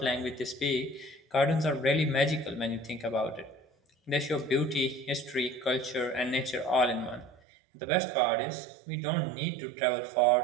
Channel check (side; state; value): left; drops out; at 7.4 s